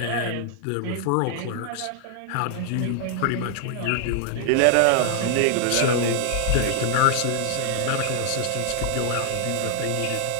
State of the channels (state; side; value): different; both; correlation 0.00